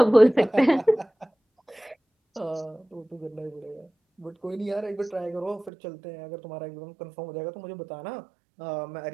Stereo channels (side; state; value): left; drops out; at 5.7 s